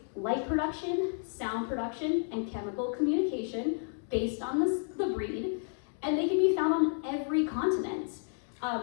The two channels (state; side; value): silent; right; 57 dB below the other